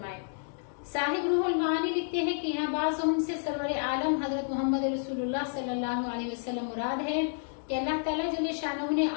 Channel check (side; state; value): right; silent; digital silence